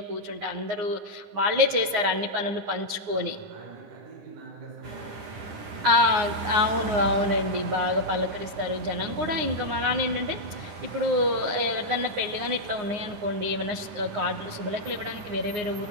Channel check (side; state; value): left; late; 9.6 ms